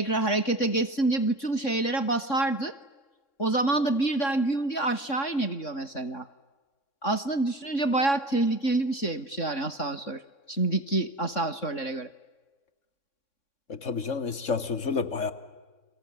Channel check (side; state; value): right; late; 3.6 ms